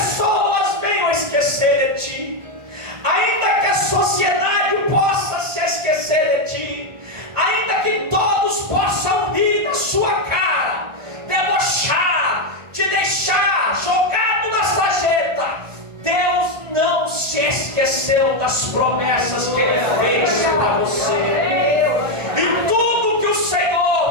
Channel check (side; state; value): left; late; 1.5 ms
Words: venham esquecer de ti, ainda que a sociedade possa se esquecer de ti, ainda que todos possam rir na sua cara, debochar, te deixar jogado na sarjeta, Deus não se esqueceu das promessas que Ele fez para você. E tudo que o